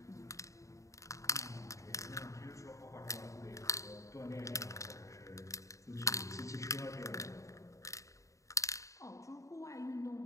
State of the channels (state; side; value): late; right; 0.15 ms